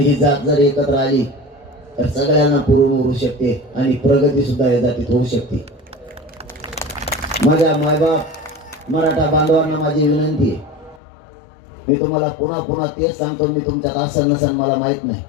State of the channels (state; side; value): drops out; right; at 11.0 s